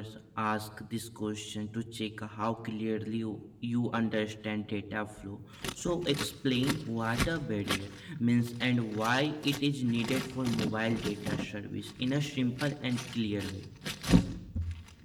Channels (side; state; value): both; identical; correlation 1.00